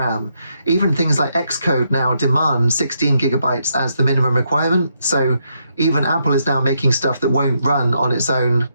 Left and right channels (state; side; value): inverted; both; correlation -0.78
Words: Even things like Xcode now demand 16 gigabytes as the minimum requirement. So even Apple is now making stuff that won't run on its own